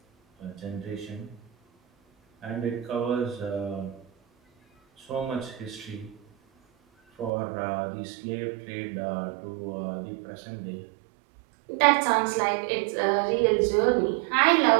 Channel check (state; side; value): drops out; left; at 7.3 s